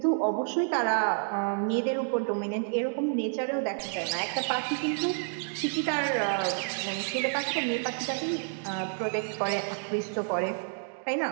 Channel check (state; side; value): silent; left; digital silence